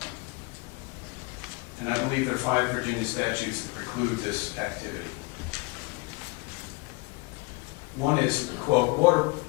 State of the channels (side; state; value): right; quieter; 25.5 dB